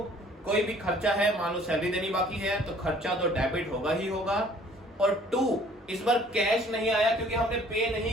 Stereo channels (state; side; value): normal; both; correlation 0.55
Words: कोई भी खर्चा है, मान लो सैलरी देनी बाकी है, तो खर्चा तो डेबिट होगा ही होगा। और टू, इस बार कैश नहीं आया क्योंकि हमने पे